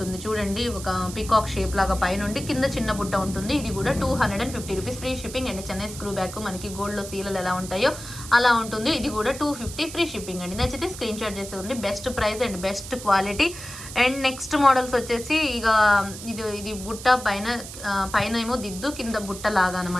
చూడండి. ఒక పికాక్ షేప్ లాగా పైన ఉండి కింద చిన్న బుట్ట ఉంటుంది. ఇది కూడా 250 rupees free shipping. And Chennai screw back మనకి గోల్డ్లో సీలలు ఎలా ఉంటాయో అలా ఉంటుంది. ఇది కూడా 250 ఫ్రీ షిప్పింగ్ అండి. నచ్చితే స్క్రీన్ షాట్ చేసేయండి. Best price and best quality. And next models వచ్చేసి ఇక ఇది బుట్ట పైన ఏమో దిద్దు, కింద బుట్ట లాగా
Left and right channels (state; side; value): noise; right; hiss, 12 dB below the sound